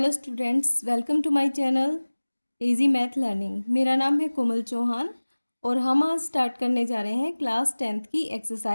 students, welcome to my channel easy math learning. मेरा नाम है कोमल चौहान और हम आज स्टार्ट करने जा रहे हैं क्लास 10th की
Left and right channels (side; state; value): both; inverted; correlation -1.00